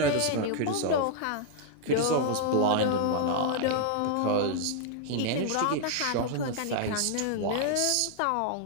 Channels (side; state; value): both; different; correlation 0.00